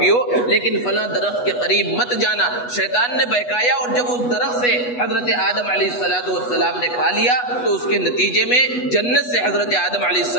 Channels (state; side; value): late; right; 8.2 ms